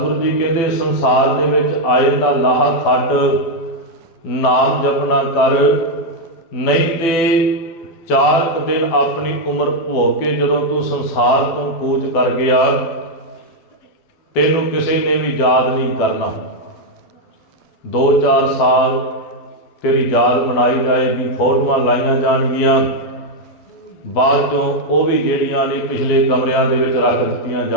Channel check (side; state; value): right; late; 12 ms